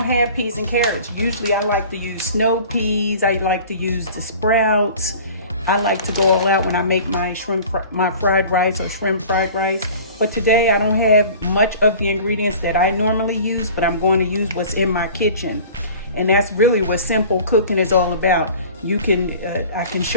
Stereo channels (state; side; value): inverted; both; correlation -0.43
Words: have peas and carrots. Usually I like to use snow peas. I like to use the sprouts. I like to go all out when I make my my fried rice or shrimp fried rice. But today I don't have much of the ingredients that I normally use, but I'm going to use what's in my kitchen. And that's really what simple cooking is all about. You can, I can